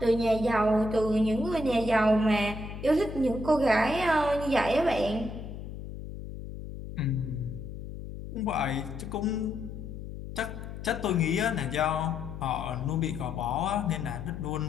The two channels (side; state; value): left; noise; hum, 10 dB below the sound